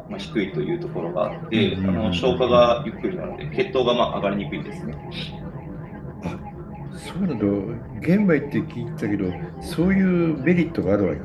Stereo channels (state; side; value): identical; both; correlation 1.00